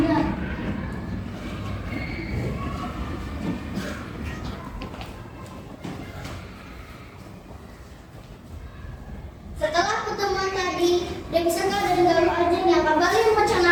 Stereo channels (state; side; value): identical; both; correlation 1.00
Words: Setelah pertemuan tadi, Dewi Sangka dan Galuh Ajeng yang kembali